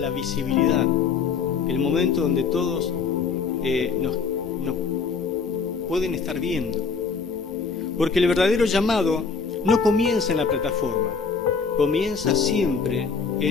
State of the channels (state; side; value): quieter; right; 5.3 dB